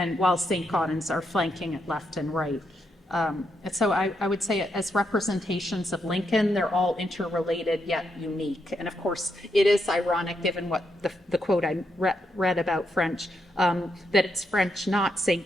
while Saint-Gaudens are flanking it left and right. And so I would say, as representations of Lincoln, they're all interrelated yet unique. And of course, it is ironic, given what the quote I read about French, that it's French, not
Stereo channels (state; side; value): normal; both; correlation 0.81